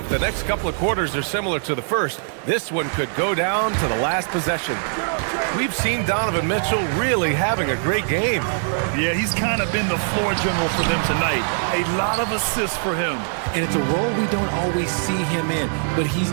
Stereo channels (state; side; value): silent; left; digital silence